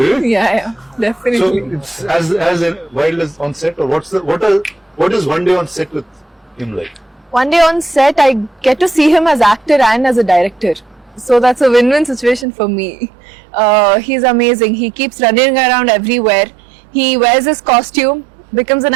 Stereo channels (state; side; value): drops out; left; at 12.5 s